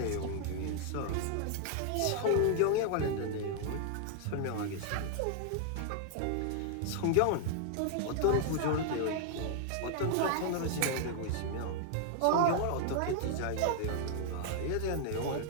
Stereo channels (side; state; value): both; different; correlation 0.00